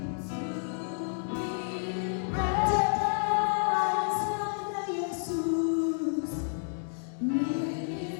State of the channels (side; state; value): right; silent; digital silence